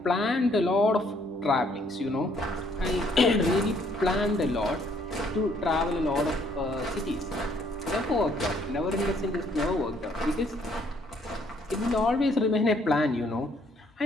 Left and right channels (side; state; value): both; normal; correlation 0.66